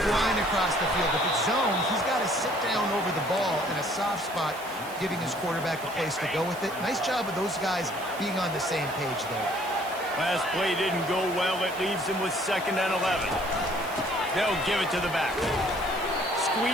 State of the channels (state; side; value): noise; right; hiss, 16 dB below the sound